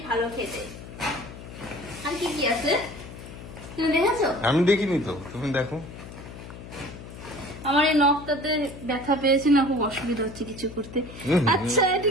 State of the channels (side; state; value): left; noise; hum, 14 dB below the sound